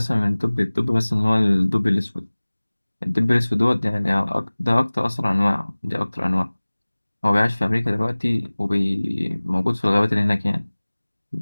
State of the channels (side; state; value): both; inverted; correlation -1.00